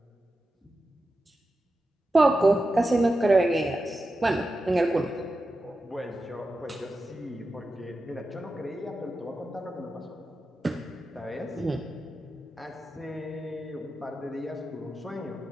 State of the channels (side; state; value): both; normal; correlation 0.91